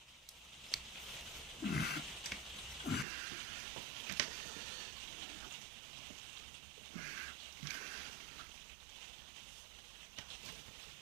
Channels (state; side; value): drops out; left; at 3.1 s